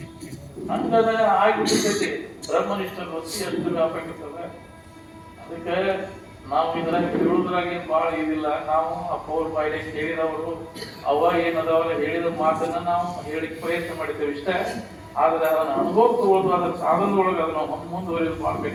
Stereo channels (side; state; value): both; identical; correlation 1.00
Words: ಹಂಗದ ಆಗಿಬಿಟ್ಟಿರ್ತೈತಿ ಬ್ರಹ್ಮನಿಷ್ಠ ವೃತ್ತಿ ಎಷ್ಟು ವ್ಯಾಪಕ ಇರ್ತದೆ. ಅದಕ್ಕೆ ನಾವು ಇದ್ರಾಗ ಹೇಳುದ್ರಾಗ ಏನ್ ಬಹಳ ಇದಿಲ್ಲ. ನಾವು ಅಪ್ಪವ್ರ ಬಾಯಿಲೆ ಕೇಳಿದವರು ಅವ ಏನದವಲ್ಲ ಹೇಳಿದ ಮಾತನ್ನ ನಾವು ಹೇಳಿಕ್ ಪ್ರಯತ್ನ ಮಾಡಿದ್ದೇವೆ ಇಷ್ಟೇ. ಆದ್ರೆ ಅದನ್ನ ಅನುಭವ ತಗೊಳ್ಳೋದು ಅದರ ಸಾಧನದೊಳಗೆ ಅದನ್ನ ಮುಂದುವರಿಯೋದು ಬಹಳ